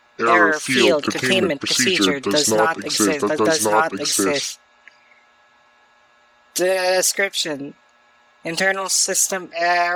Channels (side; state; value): both; identical; correlation 1.00